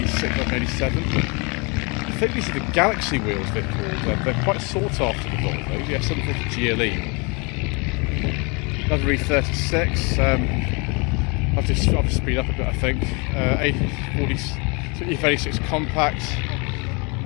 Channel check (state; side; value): quieter; right; 30.8 dB